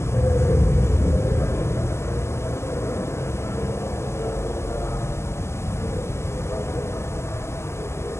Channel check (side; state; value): right; late; 0.13 ms